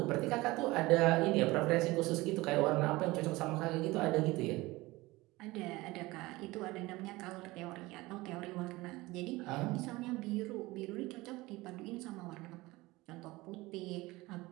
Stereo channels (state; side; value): quieter; left; 20.6 dB